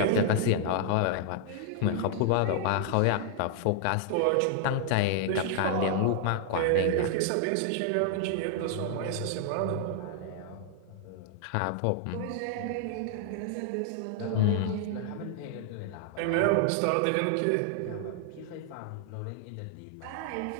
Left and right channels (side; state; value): both; different; correlation 0.00